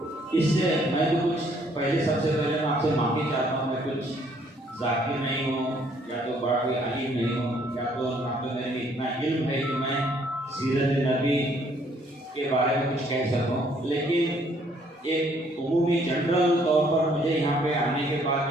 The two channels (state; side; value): normal; both; correlation 0.64